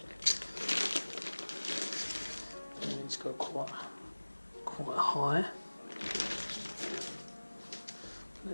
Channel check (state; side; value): inverted; both; correlation -1.00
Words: And it's got quite high.